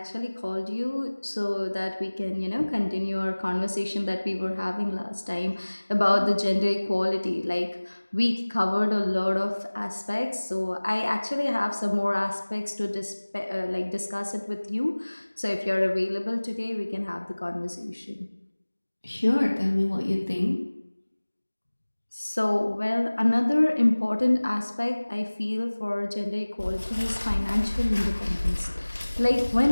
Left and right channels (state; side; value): inverted; both; correlation -1.00